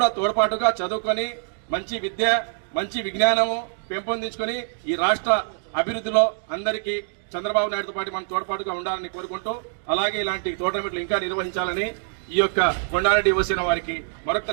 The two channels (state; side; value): silent; left; digital silence